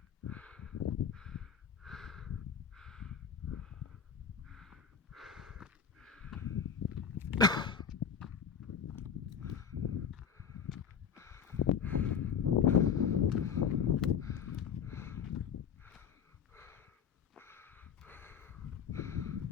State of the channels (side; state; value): right; quieter; 7.3 dB